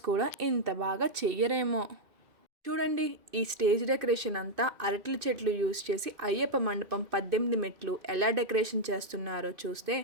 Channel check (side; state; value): left; late; 2.5 ms